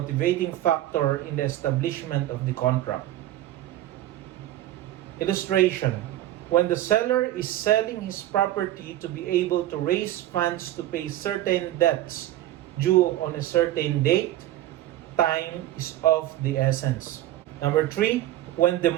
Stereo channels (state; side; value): quieter; left; 14.0 dB